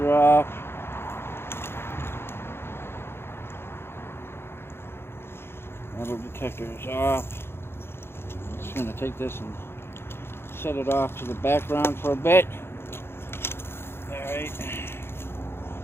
off. Metal detector is off. I'm just going to take this and set it off to the background for a bit. Alright.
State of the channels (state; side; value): late; right; 0.11 ms